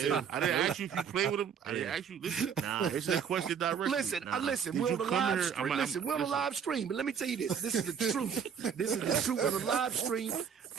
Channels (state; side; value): quieter; left; 7.3 dB